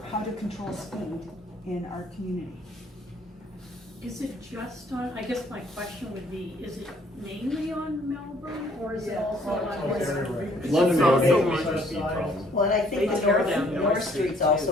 how to control speed in our community. Is it just on, I guess my question would be, is it mainly on Melbourne, or is it also on? London also Road on is a speed problem. Well, and I think They the tear down North Street's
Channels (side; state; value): both; normal; correlation 0.62